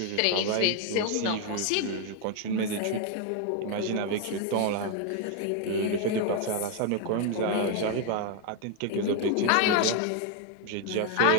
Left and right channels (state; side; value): different; both; correlation 0.01